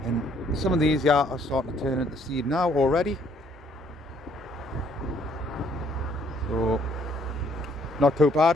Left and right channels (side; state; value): both; normal; correlation 0.65